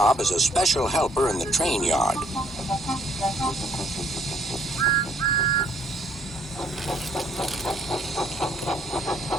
as a special helper in the train yard."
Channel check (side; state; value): both; normal; correlation 0.64